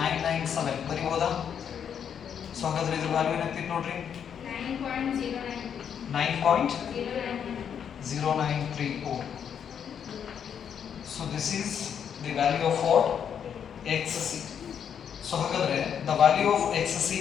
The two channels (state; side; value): quieter; right; 8.1 dB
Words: ಬರೀಬೋದಾ? So ಹಾಗಾದ್ರೆ ಇದ್ರ value ಏನಾಗ್ತಿತ್ತು ನೋಡ್ರಿ 9.093 ohm. So this is the value of what? Xc. So ಹಾಗಾದ್ರೆ the value of Xc